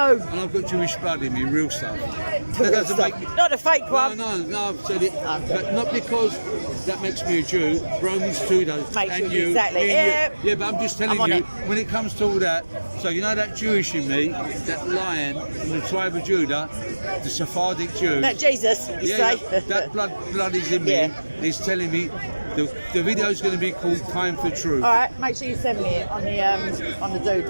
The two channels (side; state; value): both; inverted; correlation -1.00